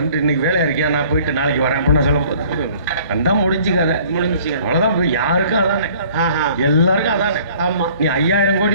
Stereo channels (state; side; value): inverted; both; correlation -0.54